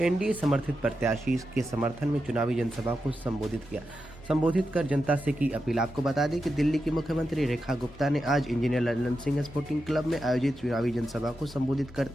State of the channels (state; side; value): normal; both; correlation 0.88